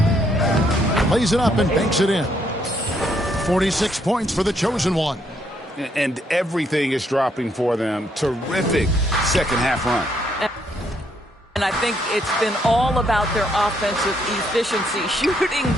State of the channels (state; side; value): normal; both; correlation 0.72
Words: Lays it up and banks it in. 46 points for the chosen one. And everything is dropping for them. Terrific second half run. And I think it's been all about their offensive efficiency, shooting